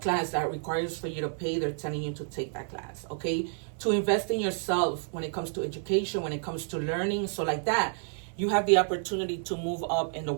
that requires for you to pay, they're telling you to take that class, okay? To invest in yourself when it comes to education, when it comes to learning, so like that, you have the opportunity to move up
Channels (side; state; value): left; silent; 58 dB below the other